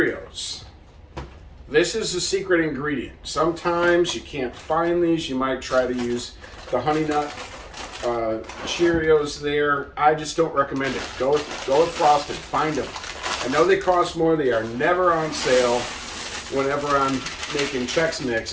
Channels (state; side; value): identical; both; correlation 1.00